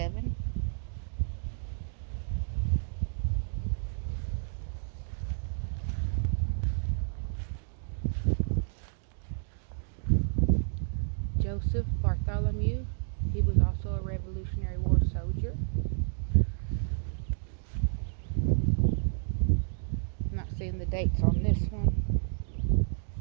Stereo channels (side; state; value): left; silent; digital silence